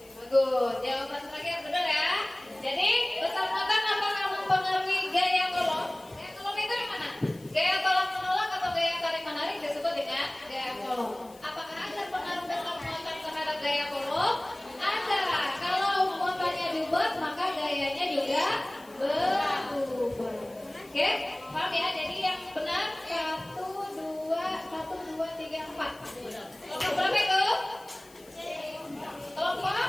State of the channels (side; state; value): left; noise; hiss, 25 dB below the sound